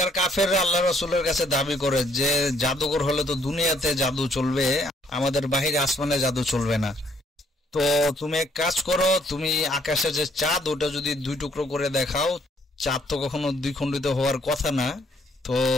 কাফেররা আল্লাহ রসুলের কাছে দাবি করে যে জাদুঘর হলে তো দুনিয়াতে জাদু চলবে, আমাদের বাহিরে আসমানে জাদু চলবে না। তো তুমি এক কাজ করো, তুমি আকাশে যে চাঁদ ওটা যদি দুই টুকরো করে দেখাও, চাঁদ তো কখনো দ্বিখণ্ডিত হওয়ার কথা না, তো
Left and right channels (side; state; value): both; normal; correlation 0.66